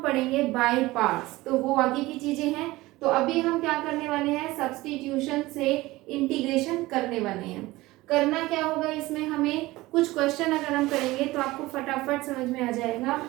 बाय पार्ट्स। तो वो आगे की चीजें हैं। तो अभी हम क्या करने वाले हैं, सब्स्टिट्यूशन से इंटीग्रेशन करने वाले हैं। करना क्या होगा इसमें, हमें कुछ क्वेश्चन अगर हम करेंगे तो आपको फटाफट समझ में आ जाएगा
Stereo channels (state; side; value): quieter; left; 19.2 dB